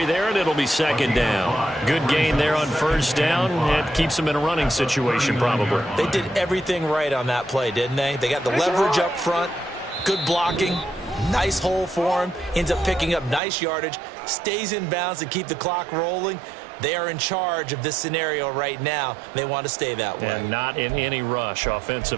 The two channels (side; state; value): left; drops out; at 13.4 s